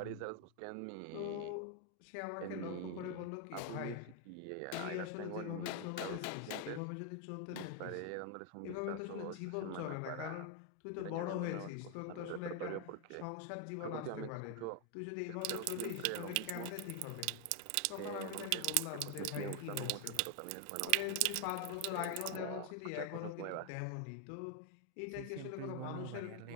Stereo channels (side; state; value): both; different; correlation 0.00